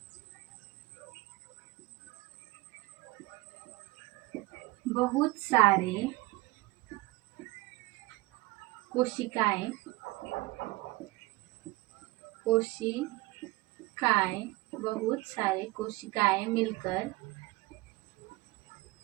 बहुत सारे कोशिकाएं, कोशिकाएं, बहुत सारे कोशिकाएं मिलकर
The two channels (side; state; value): left; quieter; 21.5 dB